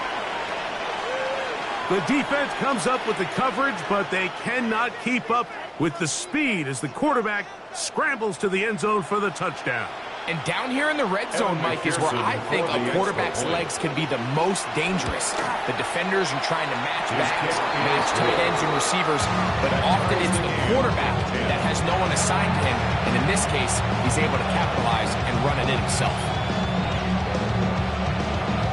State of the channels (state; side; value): identical; both; correlation 1.00